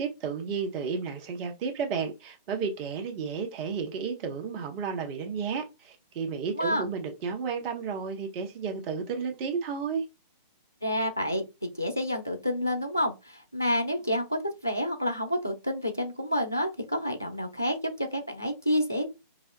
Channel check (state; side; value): inverted; both; correlation -0.56